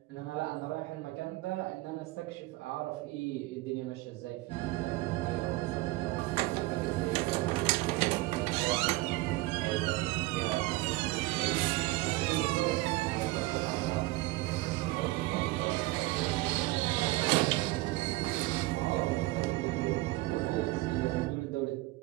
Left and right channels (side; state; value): left; quieter; 20.1 dB